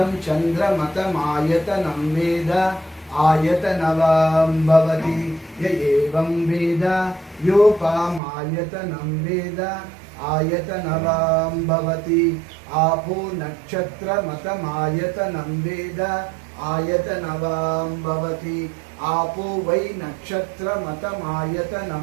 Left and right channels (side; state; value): left; drops out; at 8.2 s